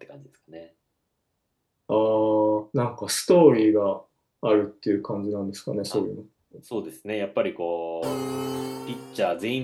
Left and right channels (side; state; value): both; identical; correlation 1.00